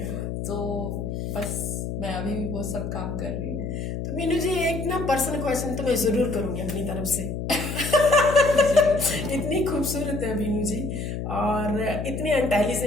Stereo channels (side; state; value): left; noise; hum, 4 dB below the sound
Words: तो बस मैं अभी भी वो सब काम कर रही हूँ। तो मीनू जी एक ना पर्सनल क्वेश्चन तो मैं जरूर करूंगी अपनी तरफ से। इतनी खूबसूरत है बीनू जी और इतनी